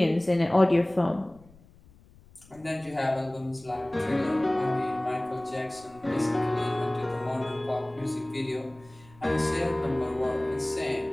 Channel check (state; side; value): noise; left; rumble, 26 dB below the sound